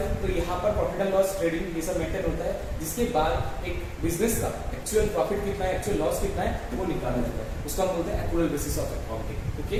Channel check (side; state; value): both; identical; correlation 1.00